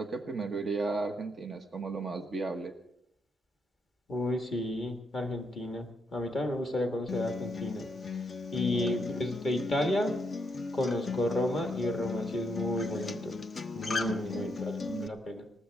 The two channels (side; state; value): both; normal; correlation 0.77